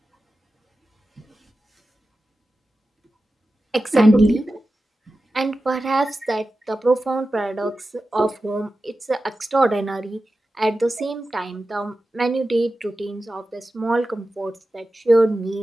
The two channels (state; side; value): normal; both; correlation 0.93